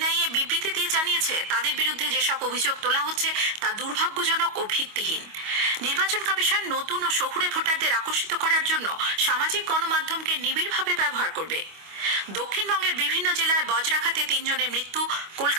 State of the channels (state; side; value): late; left; 25 ms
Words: বিবৃতি দিয়ে জানিয়েছে, তাদের বিরুদ্ধে যেসব অভিযোগ তোলা হচ্ছে তা দুর্ভাগ্যজনক ও ভিত্তিহীন। নির্বাচন কমিশন নতুন ও শহুরে ভোটারদের আকর্ষিত করার জন্য সামাজিক গণমাধ্যমকে নিবিড়ভাবে ব্যবহার করবে। দক্ষিণবঙ্গের বিভিন্ন জেলায় বজ্রাঘাতে 3 জনের মৃত্যু।